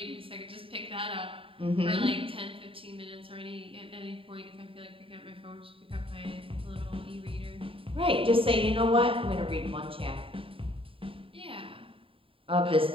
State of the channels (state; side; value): late; left; 0.26 ms